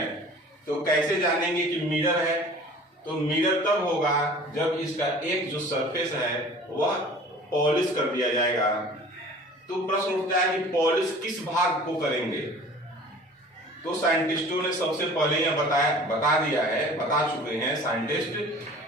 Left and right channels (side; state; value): both; normal; correlation 0.45